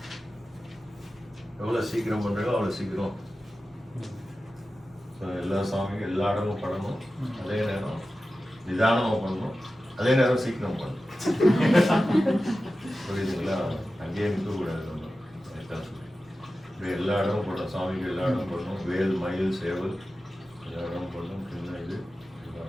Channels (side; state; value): both; normal; correlation 0.94